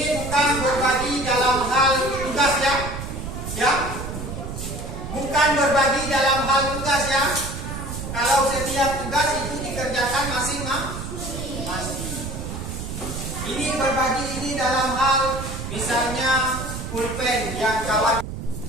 bukan berbagi dalam hal tugas ya. Ya. Bukan berbagi dalam hal tugas ya. Kalau setiap tugas itu dikerjakan masing-masing. Ini berbagi ini dalam hal misalnya pulpen yang kawan.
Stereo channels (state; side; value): noise; right; rumble, 7 dB below the sound